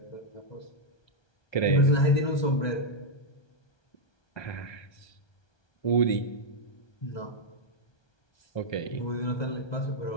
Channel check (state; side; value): late; right; 1.3 ms